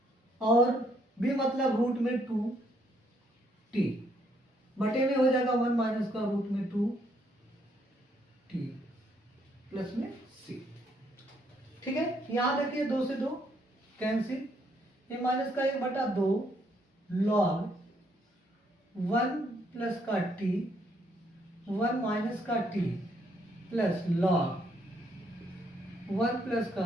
और b मतलब रूट में 2t बटे में हो जाएगा 1 माइनस का रूट में 2t प्लस में c, ठीक है। यहां देखिए 2 से 2 कैंसिल, ये माइनस का 1/2 लॉग 1 प्लस का t 1 माइनस का t प्लस लॉग 1 प्लस का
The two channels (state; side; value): normal; both; correlation 0.71